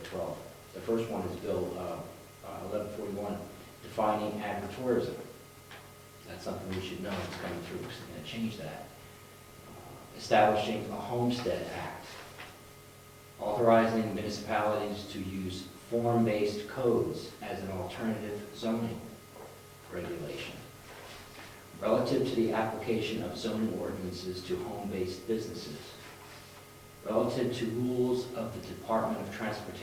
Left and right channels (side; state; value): both; identical; correlation 1.00